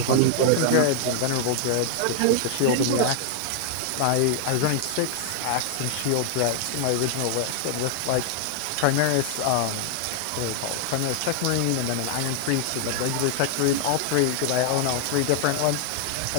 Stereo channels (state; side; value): different; both; correlation 0.00